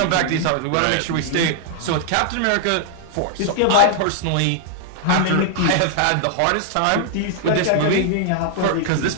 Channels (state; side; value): different; both; correlation -0.01